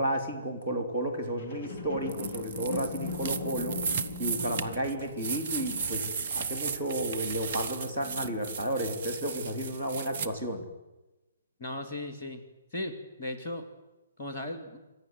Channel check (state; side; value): inverted; both; correlation -0.51